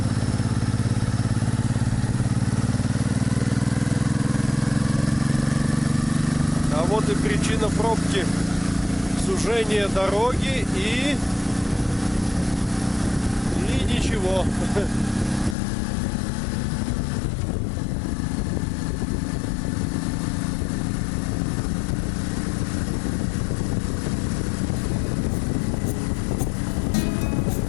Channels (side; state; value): right; drops out; at 15.6 s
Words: А вот и причина пробки. Сужение дороги и ничего.